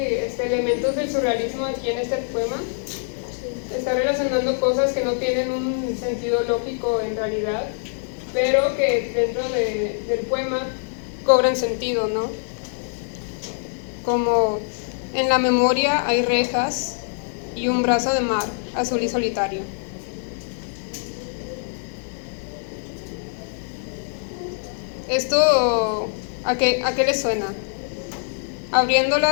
elementos del surrealismo aquí en este poema. Está relacionando cosas que no tienen un sentido lógico en realidad, pero que dentro del poema cobran sentido, ¿no? Como en la memoria hay rejas y un brazo de mar azul y solitario. ¿Esto a qué le suena?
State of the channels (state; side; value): silent; right; digital silence